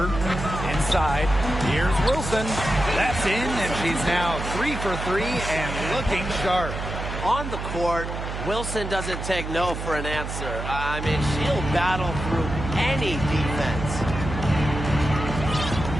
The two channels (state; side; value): noise; right; hum, 6 dB below the sound